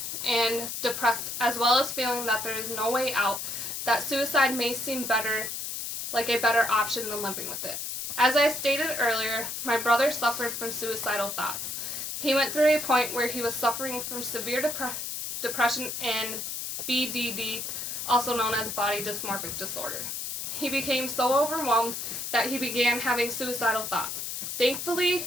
and depressed, as well as feeling that there is no way out, that suicide may seem like a better option than living with it. As I stated earlier, my brother suffered from suicidal thoughts. He went through a point where he was suffering from severe depression and BDD, also known as body dysmorphic disorder. He became so overwhelmed that he began having suicidal thoughts.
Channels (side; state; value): left; noise; hiss, 5 dB below the sound